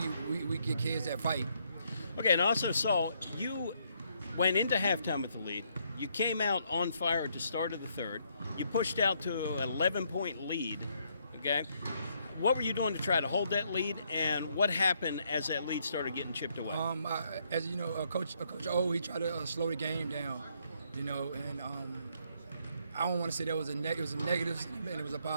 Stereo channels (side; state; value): both; inverted; correlation -0.73